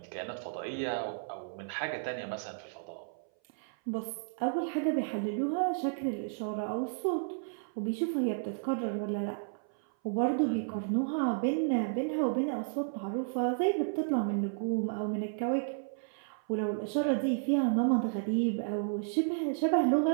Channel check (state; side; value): silent; left; 56 dB below the other